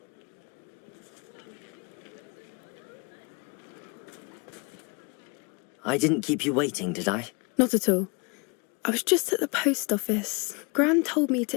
I didn't keep you waiting, did I? Not at all. I was just at the post office. Gran told me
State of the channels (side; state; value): right; quieter; 30.9 dB